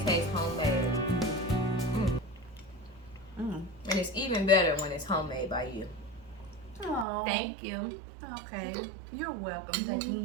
taste homemade. Mm. Mm. And it's even better when it's homemade by you. Oh. Thank you. Okay. You're welcome. Thank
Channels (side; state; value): left; drops out; at 7.1 s